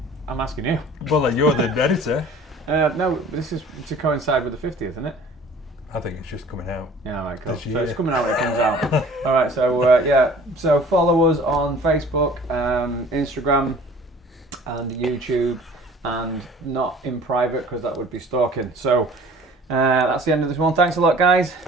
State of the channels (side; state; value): both; normal; correlation 0.48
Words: I'm asking you. Well, you're the editor. No, this is to coincide with the 50th, isn't it? I think it's just coming out. Yeah, all right, cool. So it's coming out when it comes out. All right, so follow us on Facebook, Instagram, and YouTube, and not in private because that would be stalking. So that's the end of this one. Thanks a lot, guys.